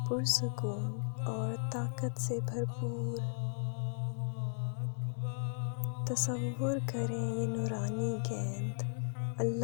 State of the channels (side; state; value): right; silent; digital silence